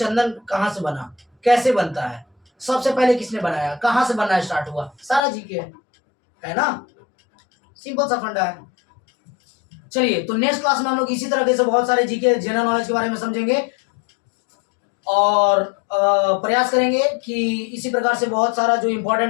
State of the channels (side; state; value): right; drops out; at 5.2 s